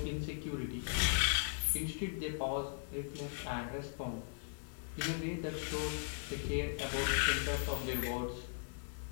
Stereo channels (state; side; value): silent; right; digital silence